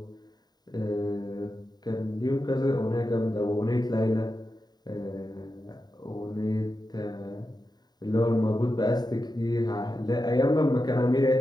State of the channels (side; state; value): right; late; 0.20 ms